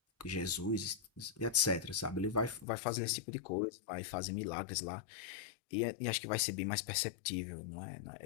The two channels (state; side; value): drops out; right; at 2.7 s